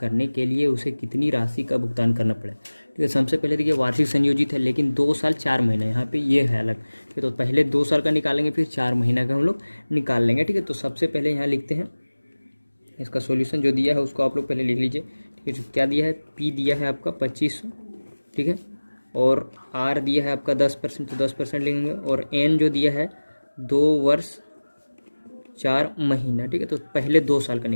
के लिए उसे कितनी राशि का भुगतान करना पड़े, ठीक है। सबसे पहले देखिए वार्षिक संयोजित है, लेकिन 2 साल 4 महीना यहाँ पे ये है अलग, ठीक है। तो पहले 2 साल का निकालेंगे, फिर 4 महीना का हम लोग निकाल लेंगे, ठीक है। तो सबसे पहले यहाँ लिखते हैं इसका सॉल्यूशन, जो दिया है उसको आप लोग पहले लिख लीजिए, ठीक है। क्या दिया है, पी दिया है आपका 2500, ठीक है, और आर दिया है आपका 10%, तो 10% लेंगे, और एन जो दिया है 2 वर्ष 4 महीना, ठीक है। तो पहले 2 साल का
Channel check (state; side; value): inverted; both; correlation -1.00